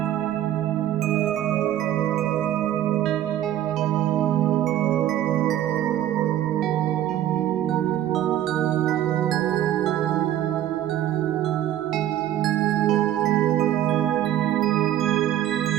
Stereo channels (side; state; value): left; quieter; 12.2 dB